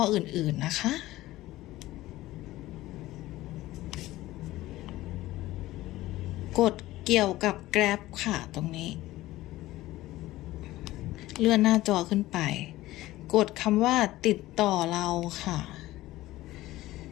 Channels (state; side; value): quieter; right; 16.8 dB